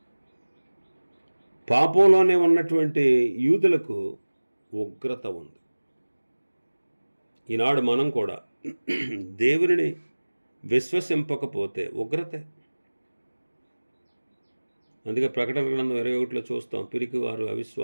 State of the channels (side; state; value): both; inverted; correlation -1.00